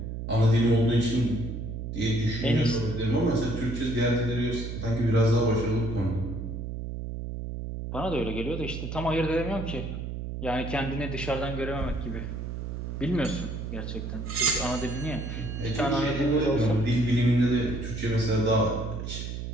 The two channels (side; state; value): right; noise; hum, 6 dB below the sound